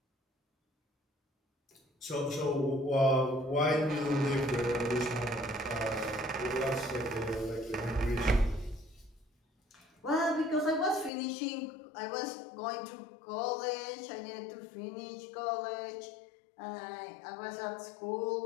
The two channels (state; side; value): drops out; right; at 11.1 s